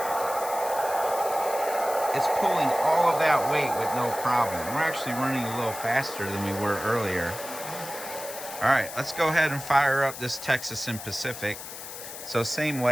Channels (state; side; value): noise; left; hiss, 11 dB below the sound